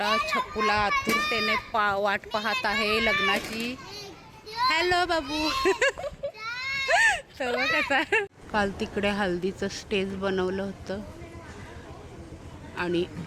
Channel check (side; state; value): both; identical; correlation 1.00